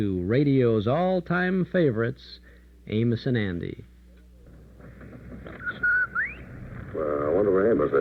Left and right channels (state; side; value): identical; both; correlation 1.00